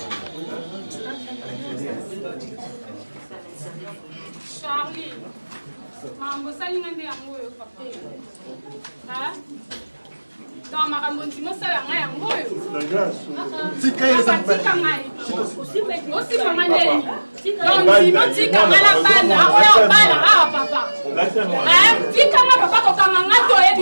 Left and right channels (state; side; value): inverted; both; correlation -1.00